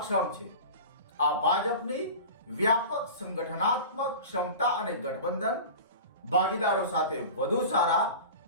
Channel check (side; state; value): both; inverted; correlation -0.34